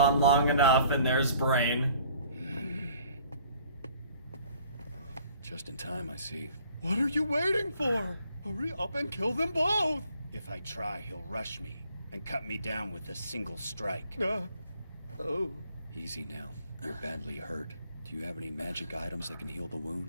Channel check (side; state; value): both; inverted; correlation -0.57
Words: long enough, and there's Brain. Just in time, I see. What are you waiting for? Hurry up and kill them both! If I try, he'll rush me and cut me down with a single strike. Oh. Easy now. You're badly hurt. Do you have any magic items that can heal the